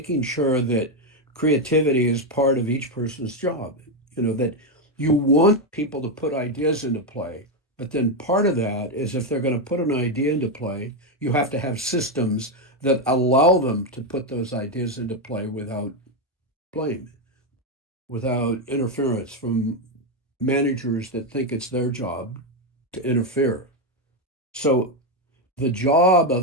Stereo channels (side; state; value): both; normal; correlation 0.06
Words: sure that creativity is part of each person's job. That you want people to put ideas into play, but then part of that is if they're going to put an idea into play, you have to have systems that allow them to put those ideas into play without blame, without interference from managers that think it's their job to interfere. So the job